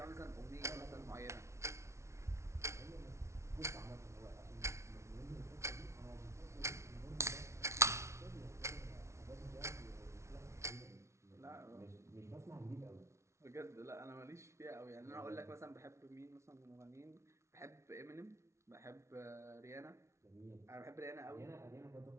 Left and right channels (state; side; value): late; left; 0.13 ms